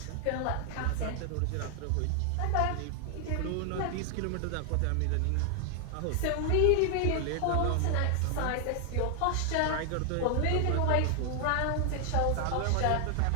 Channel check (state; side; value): different; both; correlation 0.00